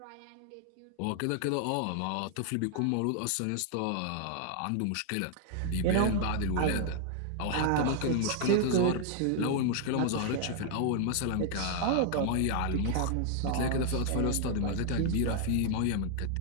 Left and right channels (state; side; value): different; both; correlation 0.00